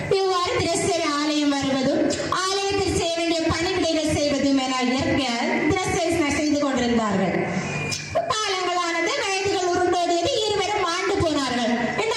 இவ்வாறு தினசரி ஆலயம் வருவதும் ஆலயத்தில் செய்ய வேண்டிய பணிவிடைகள் செய்வதும் என தினசரி செய்து கொண்டிருந்தார்கள். காலங்களானது, வயதுகள் உருண்டோடியது. இருவரும் மாண்டு போனார்கள். இந்த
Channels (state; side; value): identical; both; correlation 1.00